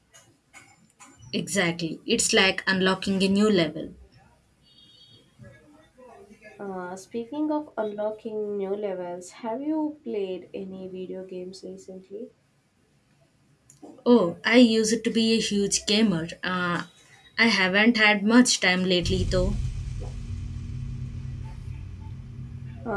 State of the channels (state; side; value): identical; both; correlation 1.00